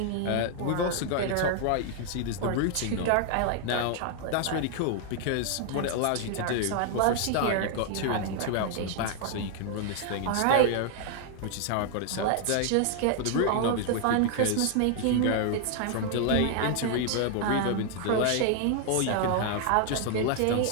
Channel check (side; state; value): both; different; correlation 0.00